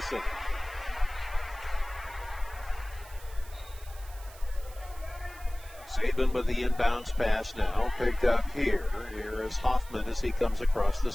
Saban with the inbounds pass now. Picked up here. Here is Hoffman as he comes across the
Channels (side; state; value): right; noise; hiss, 20 dB below the sound